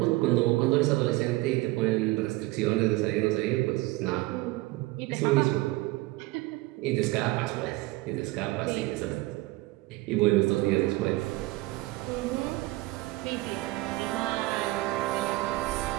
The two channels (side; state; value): left; quieter; 20.1 dB